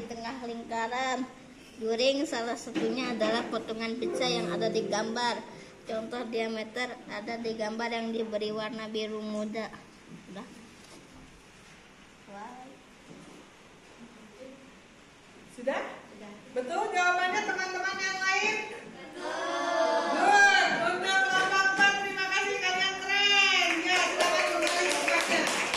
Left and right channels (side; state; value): both; identical; correlation 1.00